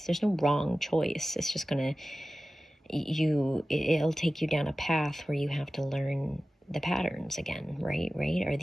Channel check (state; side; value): normal; both; correlation 0.96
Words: There's no wrong choice. It's just it'll take you down a path where you have to learn the patterns again, right? Are